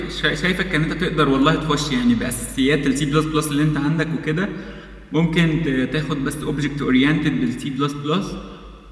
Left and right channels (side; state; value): both; identical; correlation 1.00